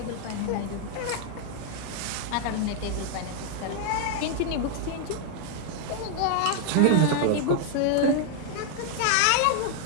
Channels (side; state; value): both; different; correlation 0.00